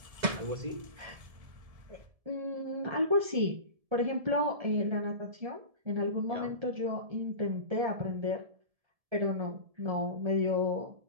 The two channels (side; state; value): left; late; 1.7 ms